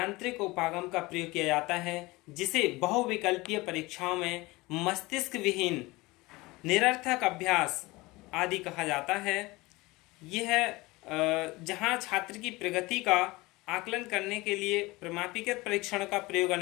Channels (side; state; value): right; quieter; 21.9 dB